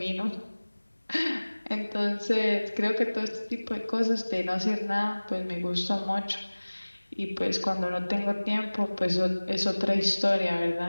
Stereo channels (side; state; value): both; inverted; correlation -1.00